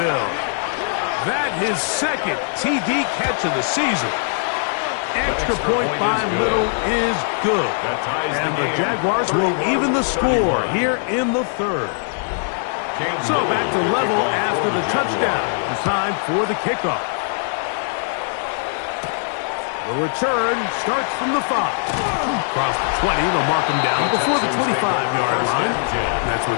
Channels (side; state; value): right; silent; 65 dB below the other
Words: That his second TD catch of the season. Extra point by Little is good. And the Jaguars will even the score here in the third. So back to level after the touchdown. It's time for the kickoff. The return starts from the 5. Across the 20, they'll mark him down before the 25-yard line. And that's where